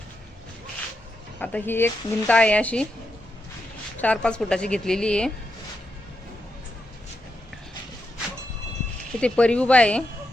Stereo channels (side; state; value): both; normal; correlation 0.85